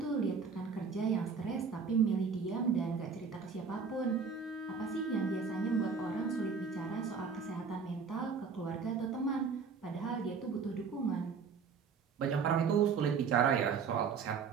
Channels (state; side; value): quieter; left; 5.6 dB